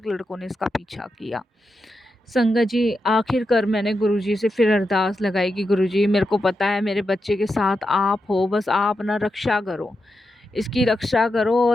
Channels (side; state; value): both; normal; correlation 0.87